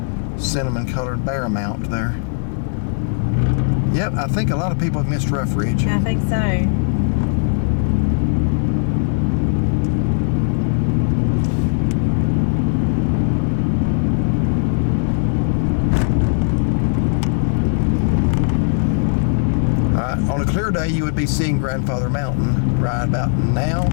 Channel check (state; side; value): silent; right; digital silence